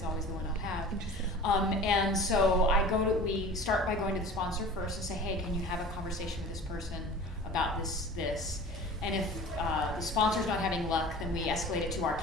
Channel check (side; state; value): both; normal; correlation 0.40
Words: always the one I'll have. And so we start by going to the sponsor first and say, hey, can you have a conversation with this person about this? And if the sponsor's not having luck, then we escalate it to our